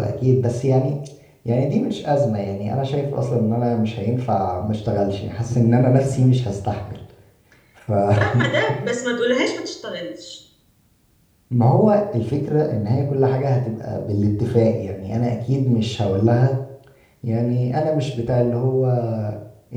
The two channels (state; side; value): identical; both; correlation 1.00